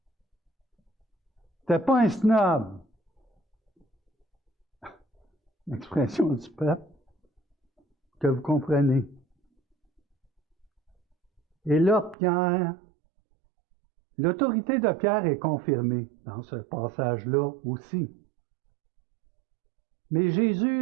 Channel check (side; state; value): left; drops out; at 12.2 s